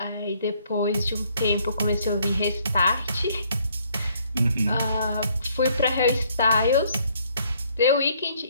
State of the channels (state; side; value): inverted; both; correlation -0.65